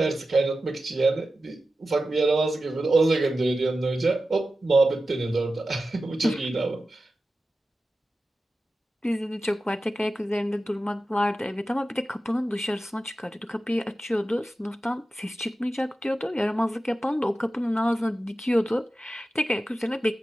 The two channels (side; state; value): both; normal; correlation 0.93